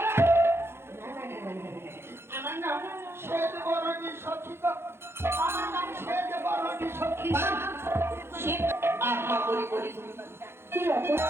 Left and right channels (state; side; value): late; left; 0.12 ms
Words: আমার নাম শ্বেত বরণী সখী গো। আমার নাম শ্বেত বরণী সখী। আহা বলি বলি কি